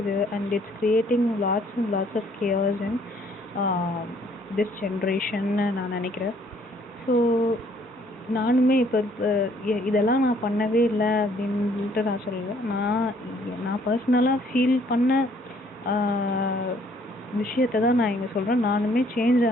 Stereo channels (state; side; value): normal; both; correlation 0.63